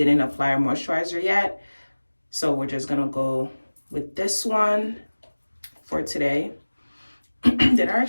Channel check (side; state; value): both; inverted; correlation -1.00